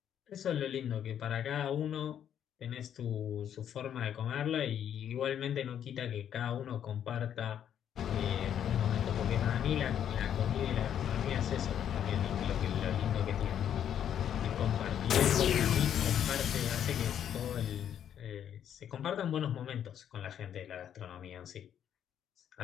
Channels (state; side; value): quieter; right; 9.5 dB